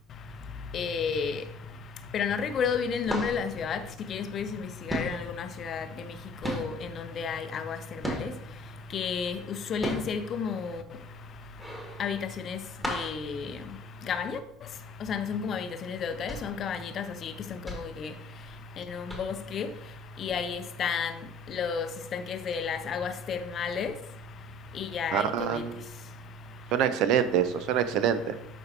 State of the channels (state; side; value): normal; both; correlation 0.47